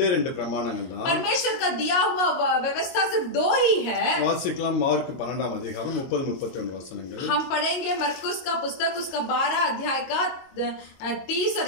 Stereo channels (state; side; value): late; right; 22 ms